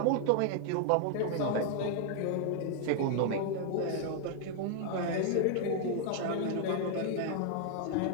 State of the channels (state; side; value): different; both; correlation 0.00